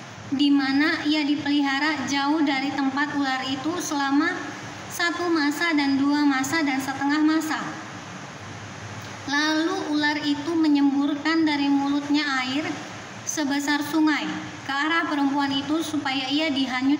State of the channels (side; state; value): both; identical; correlation 1.00